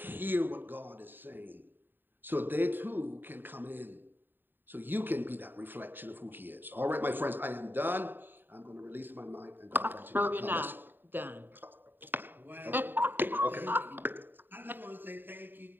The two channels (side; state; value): left; late; 0.094 ms